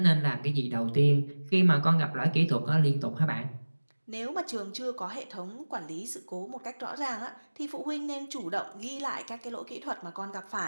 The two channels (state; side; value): inverted; both; correlation -1.00